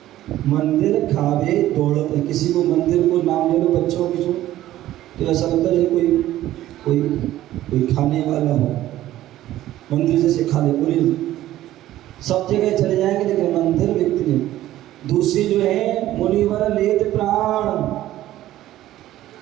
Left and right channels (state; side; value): quieter; left; 14.2 dB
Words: मंदिर खावे दौड़त है। किसी को मंदिर को नाम ले लो बच्चों की जो, तो ऐसा लगता है कोई खाने वाला हो। मंदिर जैसे खा ले, बोले सब जगह चले जाएंगे लेकिन मंदिर व्यक्ति नहीं। दूसरी जो है मुनिवर लेत प्राण